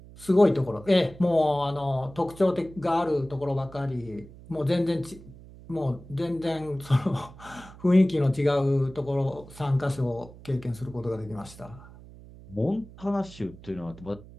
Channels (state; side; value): noise; right; hum, 19 dB below the sound